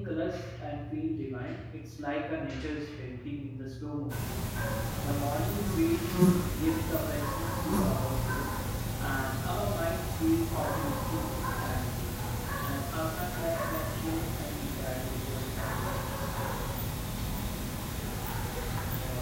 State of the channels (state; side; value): identical; both; correlation 1.00